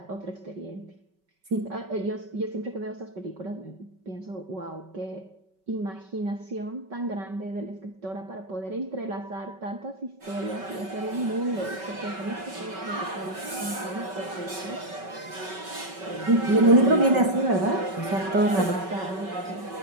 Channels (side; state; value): left; late; 5.3 ms